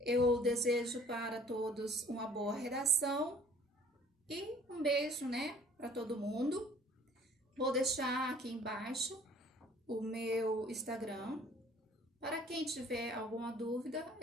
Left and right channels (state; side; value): normal; both; correlation 0.54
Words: Eu desejo para todos uma boa redação e um beijo, né, para todo mundo. Vou deixar aqui embaixo o meu Instagram. Para quem tiver alguma dúvida,